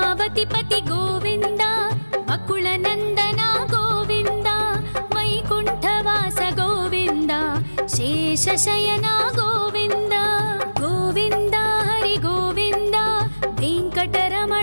गोविन्द वकुलनन्दन गोविन्द वैकुण्ठवास गोविन्द शेषशयन गोविन्द गोविन्द हरि गोविन्द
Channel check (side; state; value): both; inverted; correlation -1.00